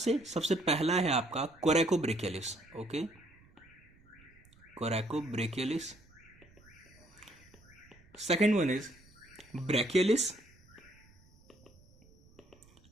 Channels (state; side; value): noise; right; rumble, 27 dB below the sound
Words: सबसे पहला है आपका कोरैकोब्रेकियलिस। Okay, कोरैकोब्रेकियलिस। Second one is brachialis,